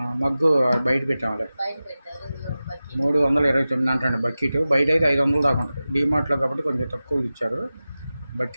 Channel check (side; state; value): both; inverted; correlation -0.96